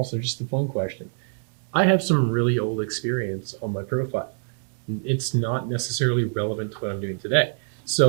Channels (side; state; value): left; silent; 62 dB below the other